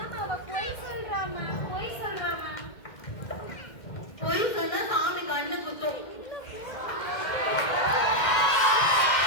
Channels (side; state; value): right; late; 1.6 ms